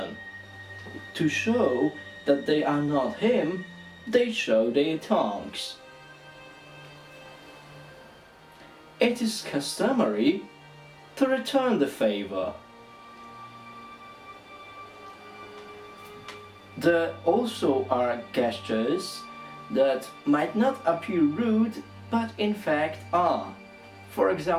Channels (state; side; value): identical; both; correlation 1.00